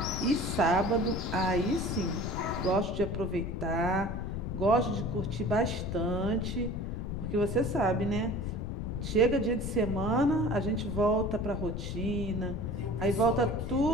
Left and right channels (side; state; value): left; noise; rumble, 4 dB below the sound